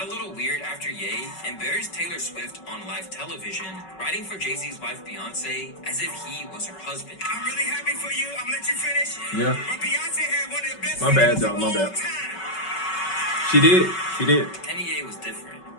a little weird after Ye embarrassed Taylor Swift on live television, writing for Jay-Z's wife Beyonce as if he was her husband. I'm really happy for you. I'm gonna let you finish. Yeah. But Beyonce had one of the best My bad, videos y'all. of My all bad. time. She did. She did. And Ye was different.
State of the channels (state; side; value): late; right; 5.3 ms